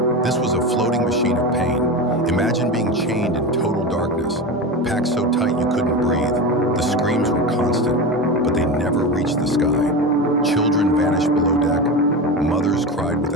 This was a floating machine of pain. Imagine being chained in total darkness, packed so tight you couldn't breathe. The screams were constant, but they never reached the sky. Children vanished below deck. Mothers cried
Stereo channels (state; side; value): normal; both; correlation 0.23